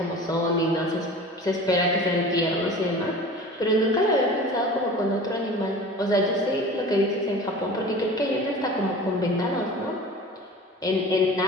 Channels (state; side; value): normal; both; correlation 0.39